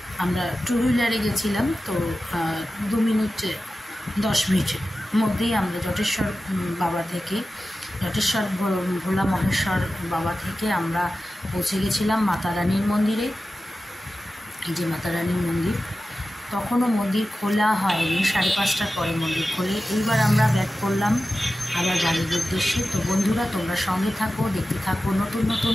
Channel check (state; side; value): normal; both; correlation 0.94